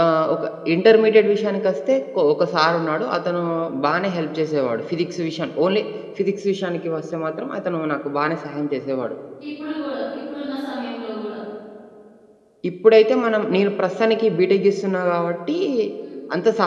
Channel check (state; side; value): identical; both; correlation 1.00